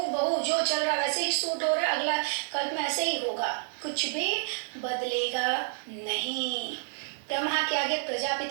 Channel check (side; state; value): left; silent; digital silence